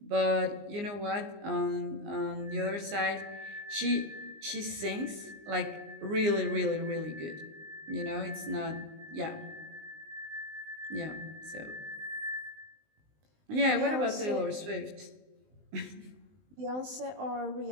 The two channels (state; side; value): late; left; 19 ms